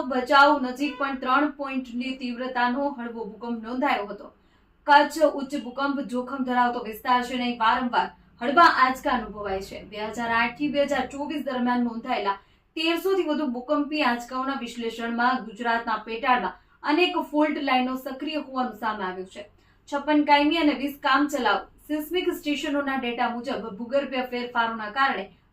ભચાઉ નજીક પણ 3 પોઈન્ટની તીવ્રતાનો હળવો ભૂકંપ નોંધાયો હતો। કચ્છ ઉચ્ચ ભૂકંપ જોખમ ધરાવતો વિસ્તાર છે અને વારંવાર હળવા આંચકા અનુભવાય છે। 2008 થી 2024 દરમિયાન નોંધાયેલા 1300 થી વધુ ભૂકંપી આંચકાઓના વિશ્લેષણમાં ગુજરાતના પેટાળમાં અનેક ફોલ્ટ લાઇનો સક્રિય હોવાનું સામે આવ્યું છે। 56 કાયમી અને 20 કામચલાઉ સિસ્મિક સ્ટેશનોના ડેટા મુજબ ભૂગર્ભીય ફેરફારોના કારણે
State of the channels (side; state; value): both; identical; correlation 1.00